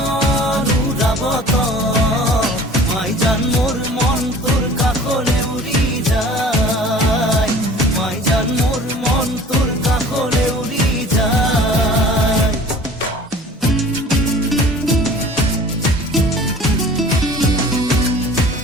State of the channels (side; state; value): both; normal; correlation 0.46